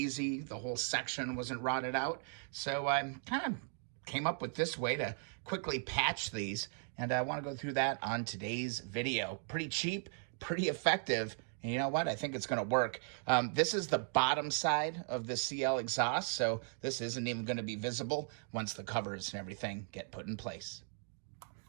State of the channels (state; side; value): silent; left; 53 dB below the other